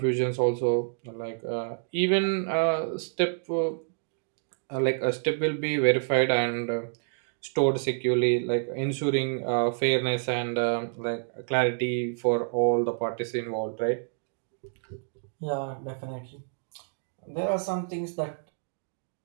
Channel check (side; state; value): left; silent; digital silence